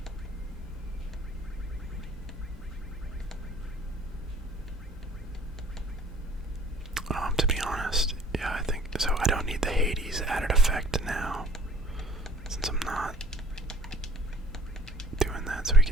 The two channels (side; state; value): both; normal; correlation 0.53